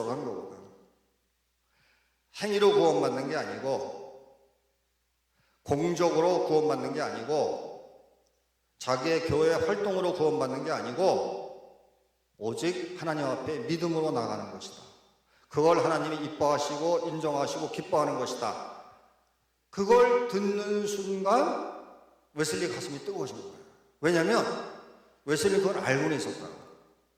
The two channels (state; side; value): identical; both; correlation 1.00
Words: 한 거거든. 행위로 구원받는 게 아니고, 공적으로 구원받는 게 아니고, 자기의 교회 활동으로 구원받는 게 아니고, 오직 하나님 앞에 믿음으로 나가는 것이다. 그걸 하나님이 이뻐하시고 인정하시고 기뻐하는 것이다. 그걸 듣는 순간 웨슬리 가슴이 뜨거워진 거예요. 왜냐하면 웨슬리 그걸 알고는 있었다고.